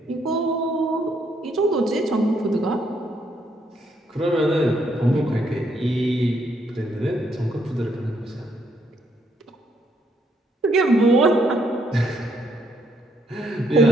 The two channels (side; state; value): both; normal; correlation 0.73